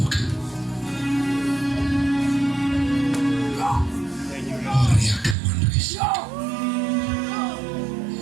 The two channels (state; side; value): drops out; left; at 5.4 s